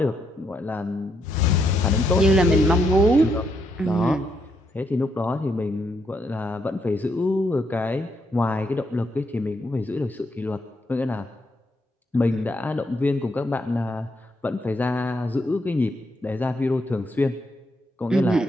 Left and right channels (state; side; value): normal; both; correlation 0.77